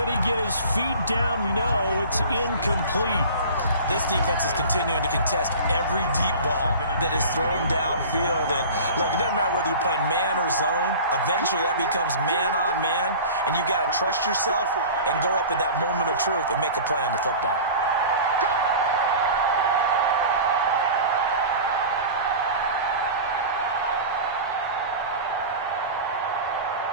he get his feet down? No, it's incomplete. This defense is continuing to contest every deep ball that is thrown downfield. And look, it doesn't matter whether you're playing man or zone. Eventually that becomes man on man. And you got to trust yourself and go up at that moment of truth and make a play on the football.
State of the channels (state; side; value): inverted; both; correlation -0.37